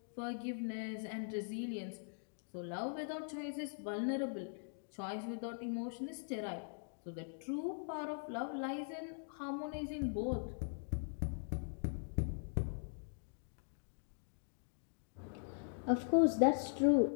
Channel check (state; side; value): silent; right; digital silence